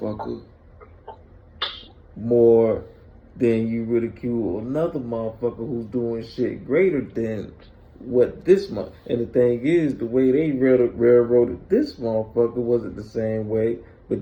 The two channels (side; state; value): both; identical; correlation 1.00